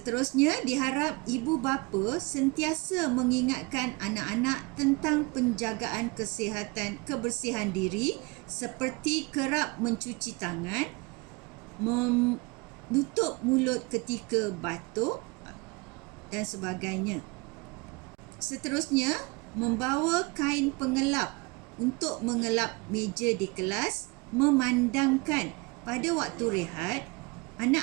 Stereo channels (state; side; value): quieter; left; 27.1 dB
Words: diharap ibu bapa sentiasa mengingatkan anak-anak tentang penjagaan kesihatan, kebersihan diri seperti kerap mencuci tangan, menutup mulut ketika batuk dan sebagainya. Seterusnya, membawa kain pengelap untuk mengelap meja di kelas, memandangkan pada waktu rehat